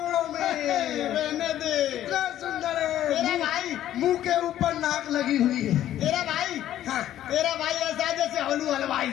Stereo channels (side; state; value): right; quieter; 12.2 dB